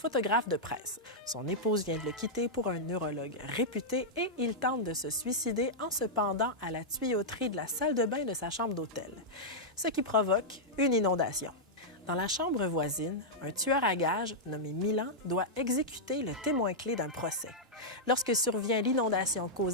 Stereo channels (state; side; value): normal; both; correlation -0.07